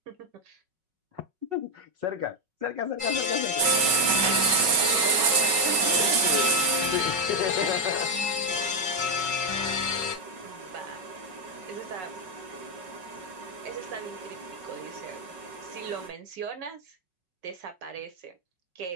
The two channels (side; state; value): left; late; 5.4 ms